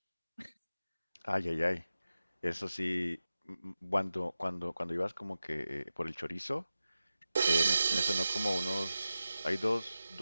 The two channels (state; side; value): inverted; both; correlation -0.93